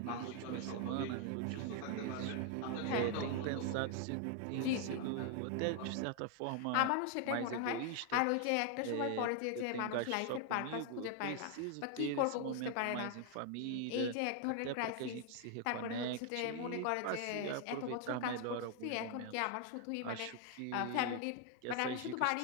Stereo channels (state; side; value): different; both; correlation 0.00